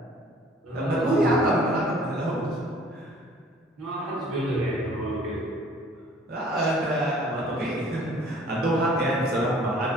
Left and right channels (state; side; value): normal; both; correlation 0.53